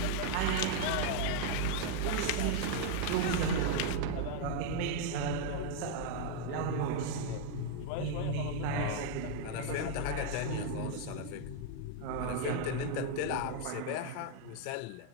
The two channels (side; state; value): both; different; correlation 0.00